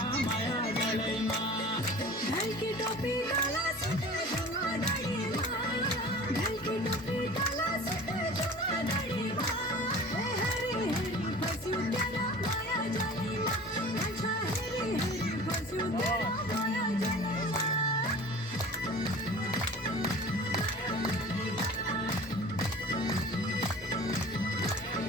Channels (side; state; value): both; normal; correlation 0.41